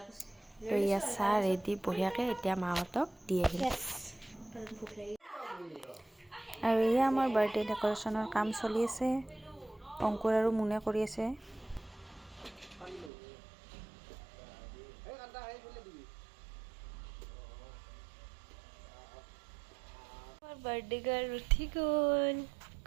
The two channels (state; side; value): drops out; left; at 13.1 s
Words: তো ইয়াত চাহ ৰেডি বঢ়িয়াকৈ, এতিয়া মাহঁতক দি আহিম। আৰু এয়া আমাৰ বাৰ্থডে ডেক'ৰেশ্যনৰ কাম চলি আছে, অংকুৰ আৰু মুনে কৰি আছে। বাৰ্থডে গাৰ্ল উঠি গ'ল।